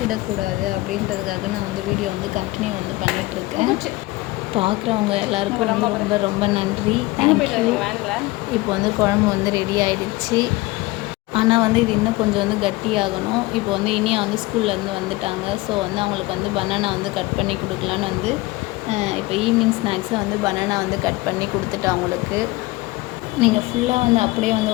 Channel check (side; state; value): right; quieter; 20.6 dB